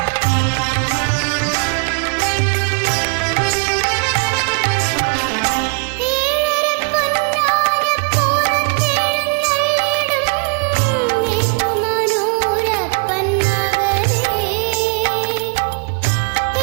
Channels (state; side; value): quieter; left; 35.9 dB